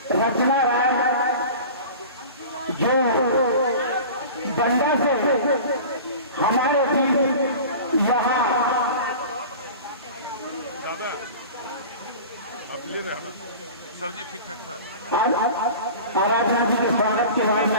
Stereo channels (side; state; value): both; inverted; correlation -0.37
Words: रचना राय जो बंगा से हमारे बीच यहाँ सर जी ठीक ठाक था। आराधना जी के स्वागत के बाद